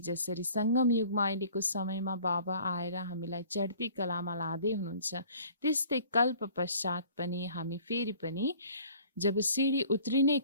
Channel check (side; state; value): both; inverted; correlation -0.51